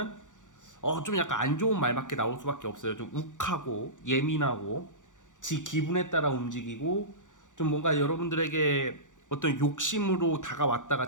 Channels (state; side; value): late; right; 0.86 ms